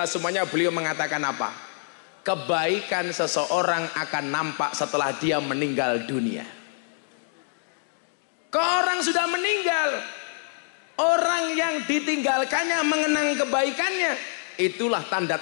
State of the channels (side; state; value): right; silent; digital silence